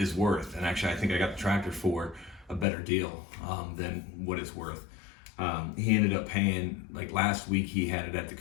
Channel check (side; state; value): right; drops out; at 2.7 s